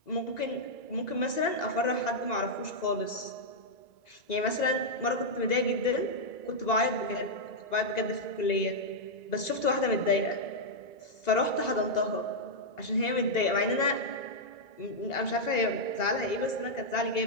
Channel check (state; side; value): late; right; 1.9 ms